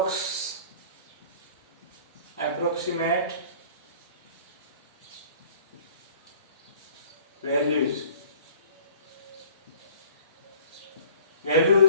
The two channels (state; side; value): inverted; both; correlation -0.50